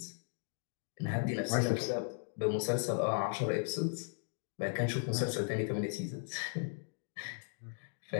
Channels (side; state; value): right; silent; digital silence